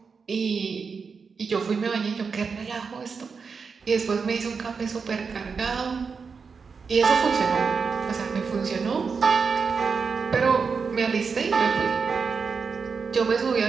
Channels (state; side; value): quieter; left; 5.4 dB